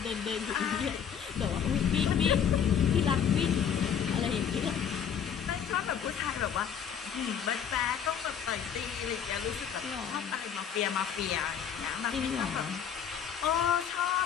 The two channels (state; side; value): quieter; right; 8.0 dB